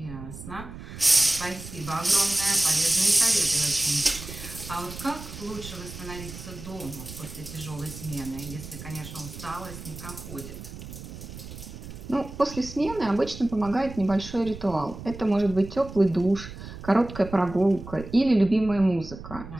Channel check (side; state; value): right; noise; rumble, 12 dB below the sound